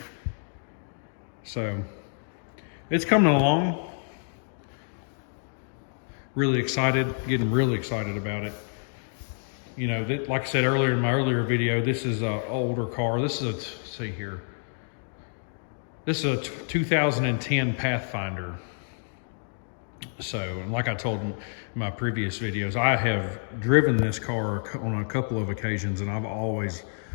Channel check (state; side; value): silent; right; 59 dB below the other